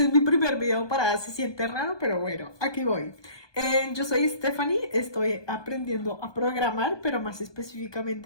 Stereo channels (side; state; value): right; late; 1.2 ms